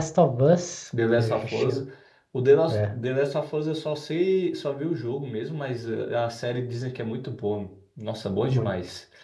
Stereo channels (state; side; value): identical; both; correlation 1.00